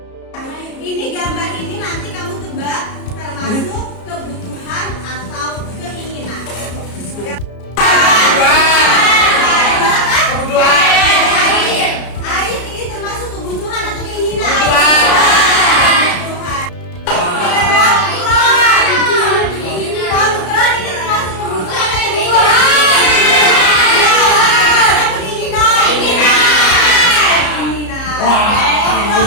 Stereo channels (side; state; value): right; late; 33 ms